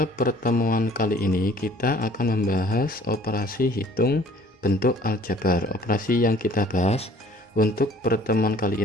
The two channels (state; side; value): normal; both; correlation 0.53